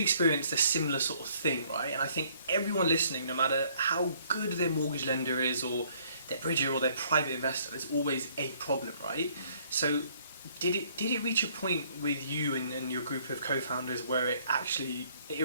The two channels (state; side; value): inverted; both; correlation -0.63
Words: a similar sort of thing, right? And I think everyone listening, no matter how good their mortgage lender is, or their bridger, or their private investor, there's always a problem, right? So did it reach a point with you and your group of co-founders where it